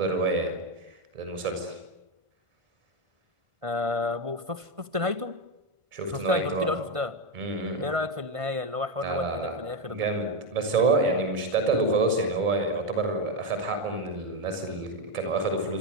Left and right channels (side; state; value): left; late; 1.5 ms